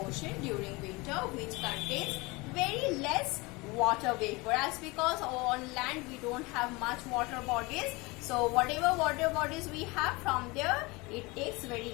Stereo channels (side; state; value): right; quieter; 24.6 dB